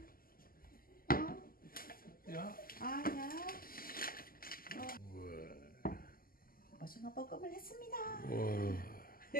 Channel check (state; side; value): late; right; 0.42 ms